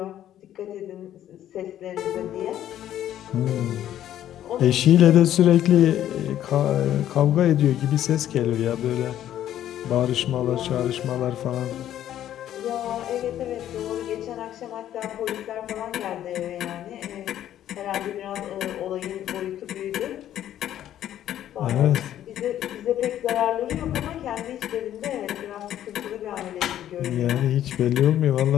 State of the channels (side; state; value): right; quieter; 11.6 dB